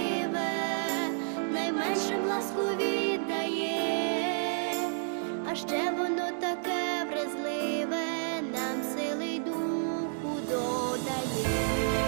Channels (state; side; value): silent; left; 57 dB below the other